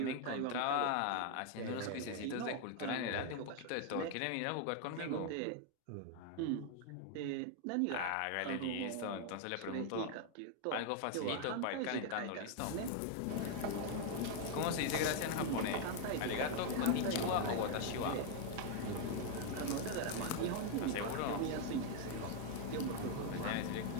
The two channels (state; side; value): different; both; correlation 0.00